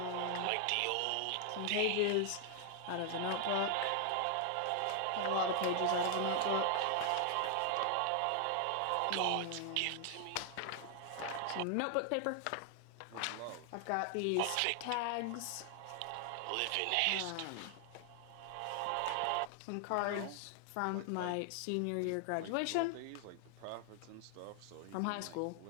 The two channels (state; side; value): different; both; correlation 0.00